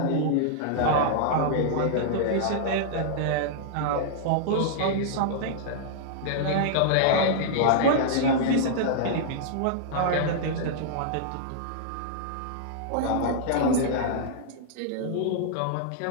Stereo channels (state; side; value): different; both; correlation -0.02